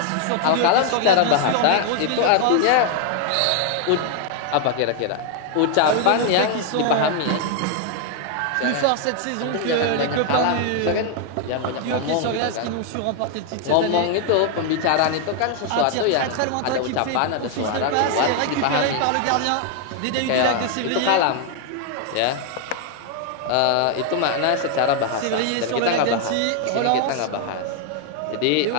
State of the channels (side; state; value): both; different; correlation 0.00